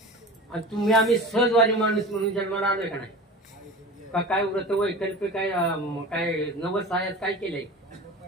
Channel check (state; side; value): normal; both; correlation 0.34